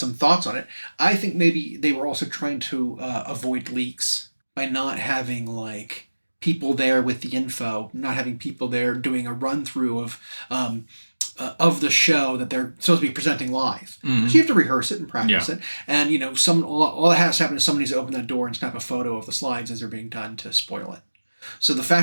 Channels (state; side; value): inverted; both; correlation -1.00